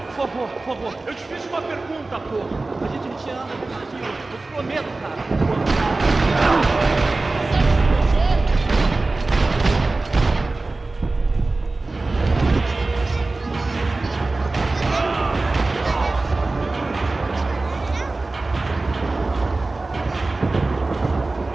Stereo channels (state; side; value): quieter; left; 3.3 dB